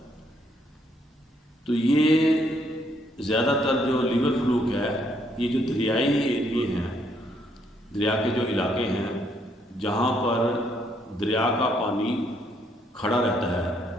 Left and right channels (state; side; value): normal; both; correlation 0.71